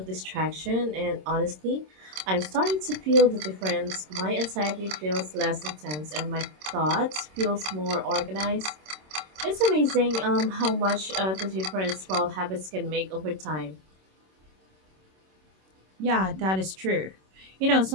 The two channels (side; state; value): left; late; 26 ms